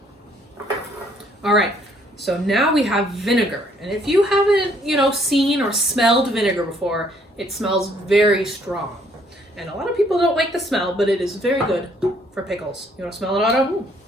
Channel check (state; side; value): normal; both; correlation 0.65